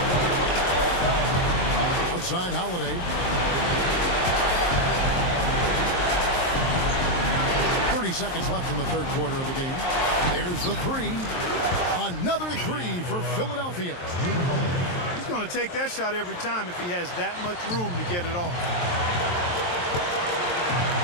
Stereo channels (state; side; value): late; right; 23 ms